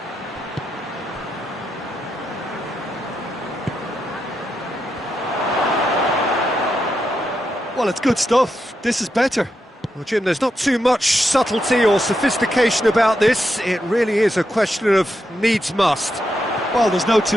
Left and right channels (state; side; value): normal; both; correlation 0.84